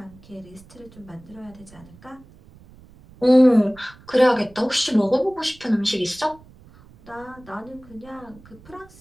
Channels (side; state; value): right; noise; rumble, 24 dB below the sound